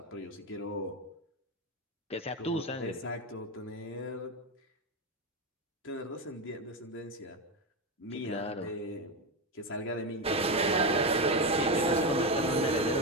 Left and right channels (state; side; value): normal; both; correlation 0.14